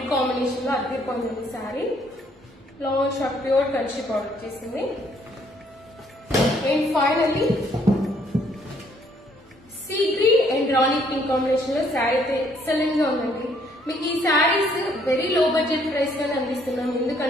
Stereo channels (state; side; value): normal; both; correlation 0.66